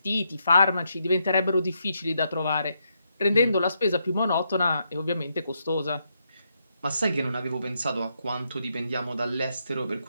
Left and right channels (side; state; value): both; inverted; correlation -0.79